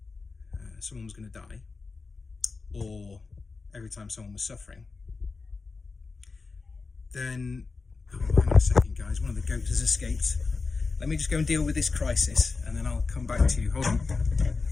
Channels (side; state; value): right; quieter; 4.3 dB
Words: someone was going to die, or every time someone was suffering, then, hang on a second guys, one of the goats has escaped. Let me just go and deal with this crisis and then I'll come back to you. Hold on.